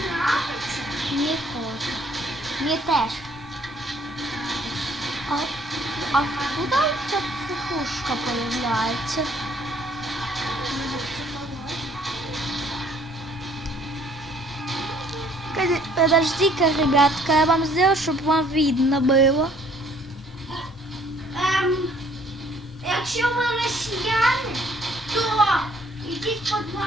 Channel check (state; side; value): normal; both; correlation 0.60